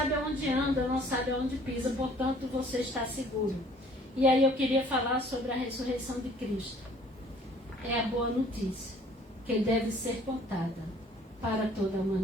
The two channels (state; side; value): normal; both; correlation 0.56